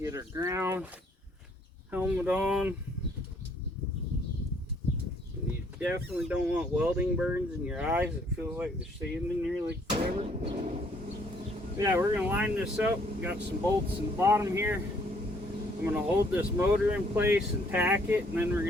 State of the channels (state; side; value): normal; both; correlation 0.64